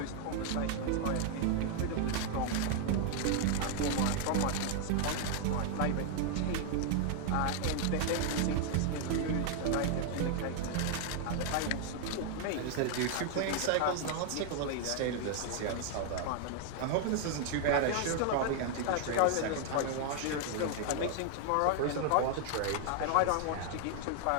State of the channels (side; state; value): both; different; correlation 0.00